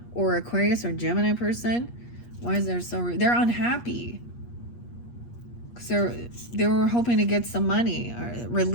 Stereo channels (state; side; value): late; right; 8.4 ms